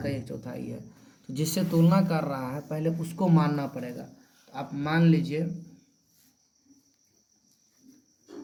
1/4 है। तो जिससे तुलना कर रहा है पहले उसको मानना पड़ेगा। तो आप मान लीजिए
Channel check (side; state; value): both; identical; correlation 1.00